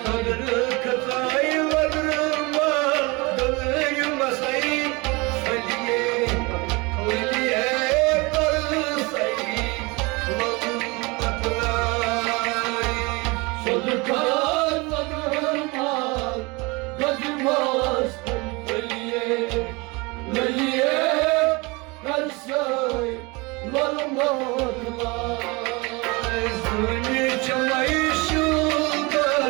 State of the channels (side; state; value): left; quieter; 26.0 dB